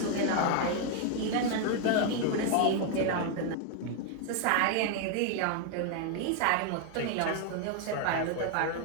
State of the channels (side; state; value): both; different; correlation 0.00